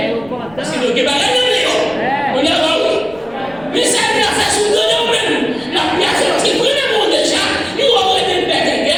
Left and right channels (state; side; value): noise; left; rumble, 25 dB below the sound